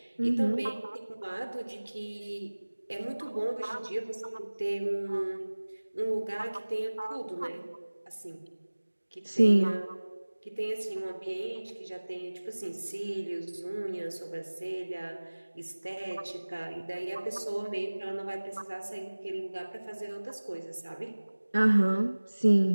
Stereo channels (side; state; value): both; inverted; correlation -1.00